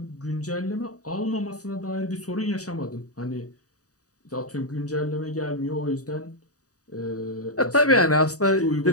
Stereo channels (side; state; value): right; late; 0.66 ms